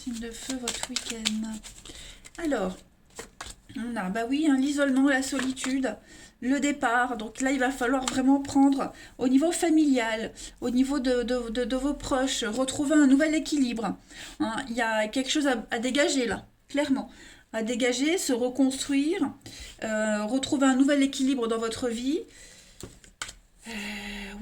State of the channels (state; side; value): identical; both; correlation 1.00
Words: de feu, votre week-end. Alors, on a, bah oui, hein, l'isolement, la solitude, le départ. Donc là, il va falloir vraiment prendre au niveau familial, au niveau de vos proches, retrouver un nouvel équilibre. Hein, il y a quelque chose à dégager là, clairement. À dégager, se reconstruire, retrouver un nouvel équilibre dans votre vie.